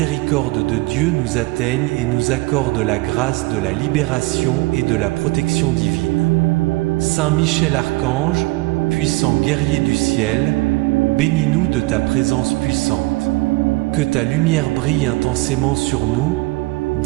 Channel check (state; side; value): quieter; left; 22.7 dB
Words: de Dieu nous atteigne et nous accorde la grâce de la libération et de la protection divine. Saint Michel Archange, puissant guerrier du ciel, bénis-nous de ta présence puissante. Que ta lumière brille intensément sur nous,